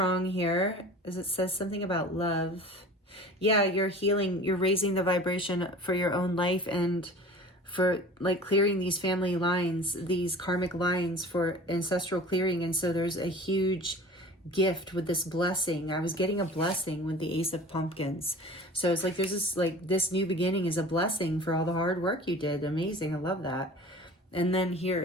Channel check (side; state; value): both; normal; correlation 0.40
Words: here, as it says something about love. Yeah, you're healing. You're raising the vibration for your own life and for like clearing these family lines, these karmic lines for ancestral clearing. And so there's a huge gift with this blessing. I was getting a blessing with the Ace of Pumpkins. So it's like there's this new beginning is a blessing for all the hard work you did. Amazing. I love that. And then here